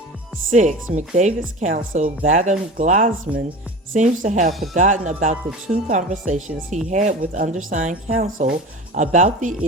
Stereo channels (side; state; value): both; normal; correlation 0.34